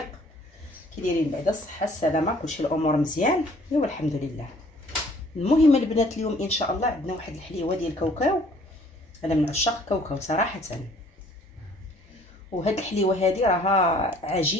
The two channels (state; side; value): normal; both; correlation 0.57